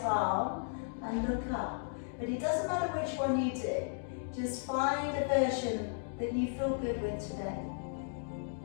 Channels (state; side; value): silent; right; digital silence